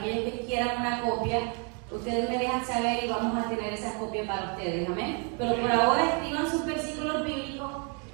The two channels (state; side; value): quieter; left; 36.5 dB